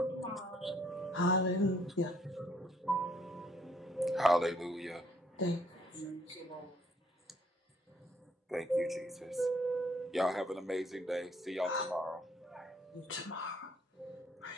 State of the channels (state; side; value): normal; both; correlation 0.66